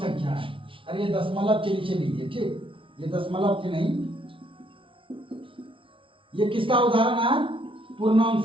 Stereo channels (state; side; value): late; left; 0.25 ms